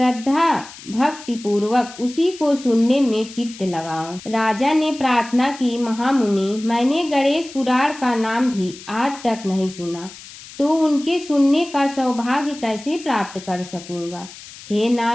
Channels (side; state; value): left; noise; hiss, 17 dB below the sound